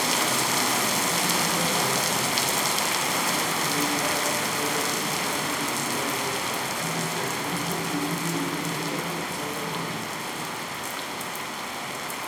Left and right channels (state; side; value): identical; both; correlation 1.00